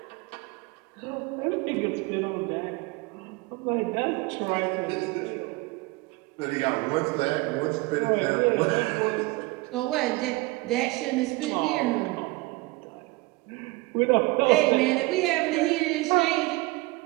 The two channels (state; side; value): quieter; left; 22.6 dB